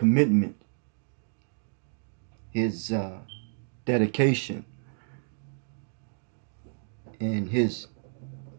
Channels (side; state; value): left; silent; digital silence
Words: his dedication, and his